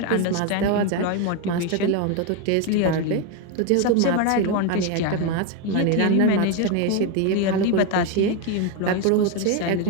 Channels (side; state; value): both; different; correlation 0.02